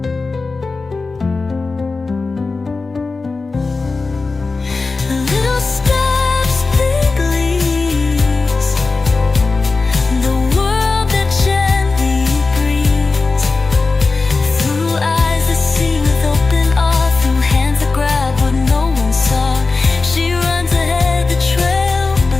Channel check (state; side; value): quieter; right; 3.9 dB